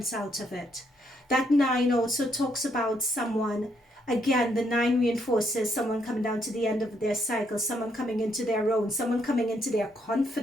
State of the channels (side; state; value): both; normal; correlation 0.74